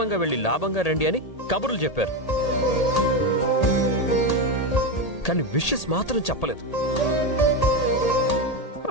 వెళ్ళి లాభంగా రండి అని కబుర్లు చెప్పారు. కానీ విషెస్ మాత్రం చెప్పలేదు.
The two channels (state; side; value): late; right; 1.8 ms